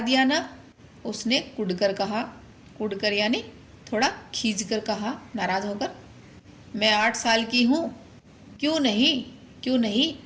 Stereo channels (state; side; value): identical; both; correlation 1.00